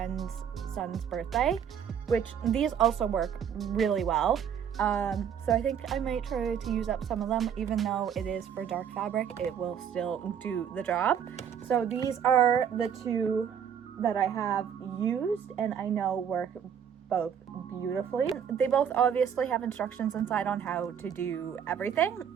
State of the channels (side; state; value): left; quieter; 8.2 dB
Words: son's birthday, which these also work really well. So I think I might try to use up some of them. Even though it is for dark fabric, it will still do the job. So these are the two that I have used and I know work both beautifully. They both obviously have instructions inside on how to do